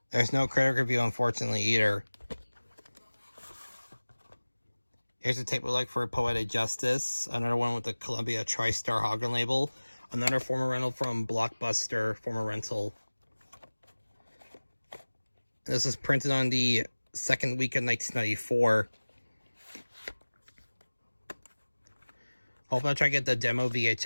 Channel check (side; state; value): both; inverted; correlation -1.00